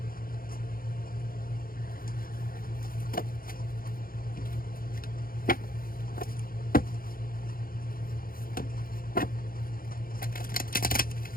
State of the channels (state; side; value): late; right; 0.42 ms